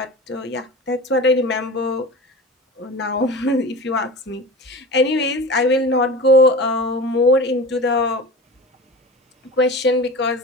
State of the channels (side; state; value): both; normal; correlation 0.33